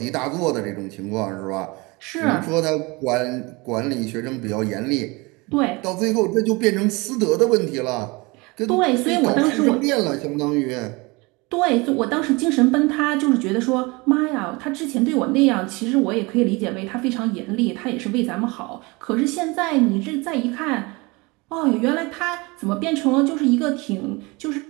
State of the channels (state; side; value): quieter; left; 25.5 dB